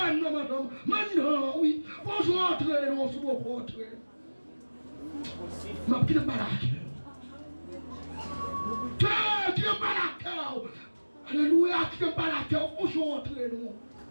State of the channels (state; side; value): inverted; both; correlation -1.00